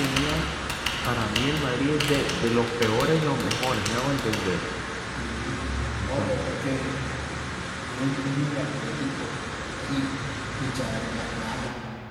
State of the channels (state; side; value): identical; both; correlation 1.00